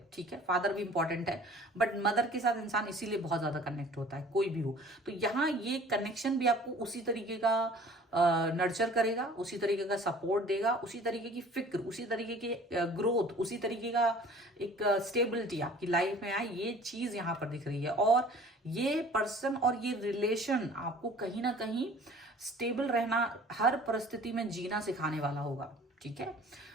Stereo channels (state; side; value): normal; both; correlation 0.48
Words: ठीक है। फादर भी इंपॉर्टेंट है बट मदर के साथ इंसान इसीलिए बहुत ज्यादा कनेक्ट होता है, कोई भी हो। तो यहाँ ये कनेक्शन भी आपको उसी तरीके का नर्चर करेगा, उसी तरीके का सपोर्ट देगा, उसी तरीके की फिक्र, उसी तरीके की ग्रोथ, उसी तरीके का एक स्टेबिलिटी आपकी लाइफ में आए, ये चीज यहाँ पर दिख रही है। और ये पर्सन और ये रिलेशन आपको कहीं ना कहीं स्टेबल रहना, हर परिस्थिति में जीना सिखाने वाला होगा। ठीक है।